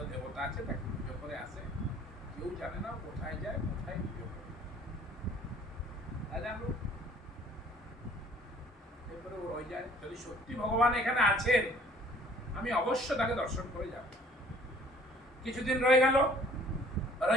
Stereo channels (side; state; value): both; normal; correlation 0.55